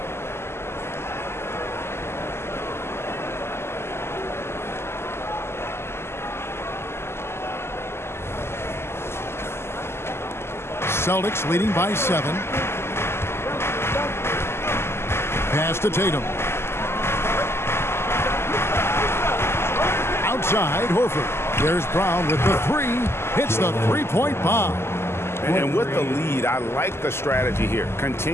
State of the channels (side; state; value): right; late; 0.12 ms